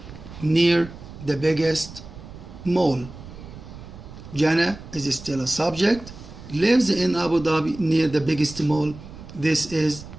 near the biggest mall. Jana is still a subject. Lives in Abu Dhabi near the biggest mall. This is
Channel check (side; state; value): right; noise; rumble, 15 dB below the sound